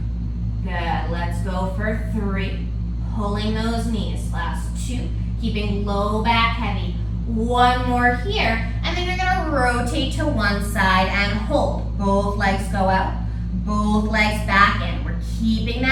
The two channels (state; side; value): identical; both; correlation 1.00